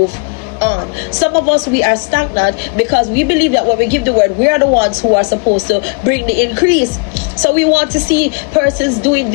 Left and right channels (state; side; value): quieter; right; 33.5 dB